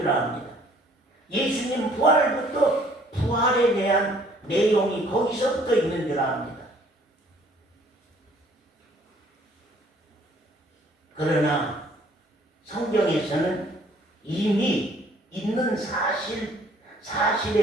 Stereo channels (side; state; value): both; normal; correlation 0.59